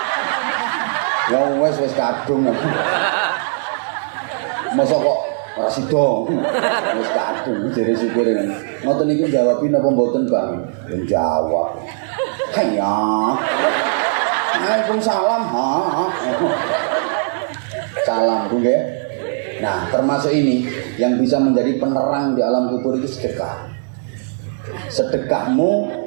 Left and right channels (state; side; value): silent; left; digital silence